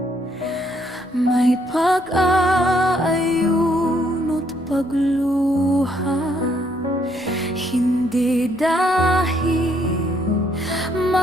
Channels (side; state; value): left; noise; rumble, 30 dB below the sound